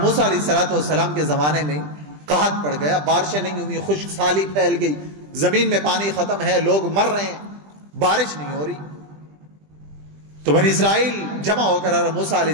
موسیٰ علیہ السلام کے زمانے میں قحط پڑ گیا، بارشیں نہیں ہوئی، خشک سالی پھیل گئی، زمین میں پانی ختم ہے، لوگ مر رہے ہیں، بارش نہیں ہو رہی. تو بنی اسرائیل جمع ہو کر حضرت موسیٰ علیہ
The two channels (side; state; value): left; late; 20 ms